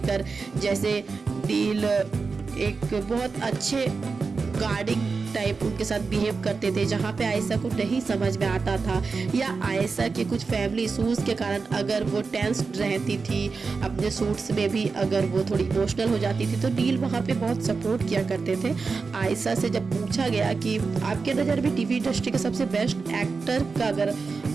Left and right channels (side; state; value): left; quieter; 4.6 dB